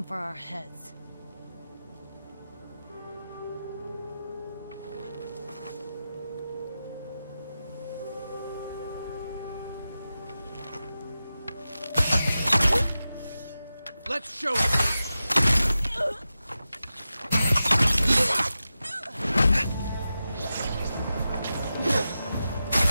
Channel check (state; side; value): inverted; both; correlation -0.92